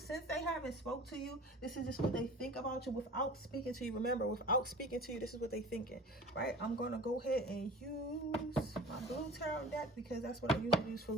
they haven't spoke to you, this is just what they think about you without speaking to you. Remember, without speaking to you, this is what they thinking, right? I'm going to go ahead and use my blue tarot deck, because that's what I usually use for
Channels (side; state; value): both; normal; correlation 0.41